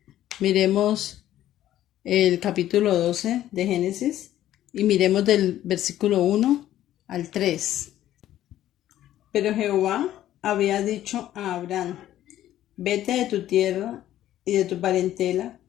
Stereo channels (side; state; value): right; quieter; 12.8 dB